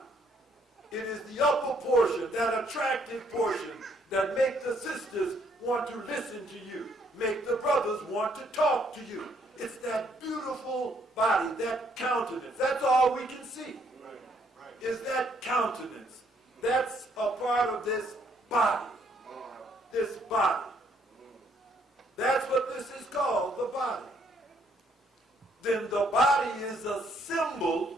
It is the upper portion, that attractive portion that make the sisters want to listen to you, make the brothers want to talk to you. It's that beautiful body, that countenance. That's all we can see. Is that countenance. That's a part of this body. This body. That's what this is called, the body. Then the body is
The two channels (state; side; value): normal; both; correlation 0.68